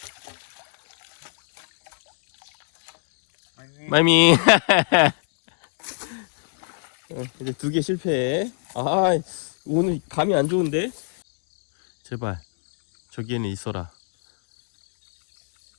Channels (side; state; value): right; silent; 59 dB below the other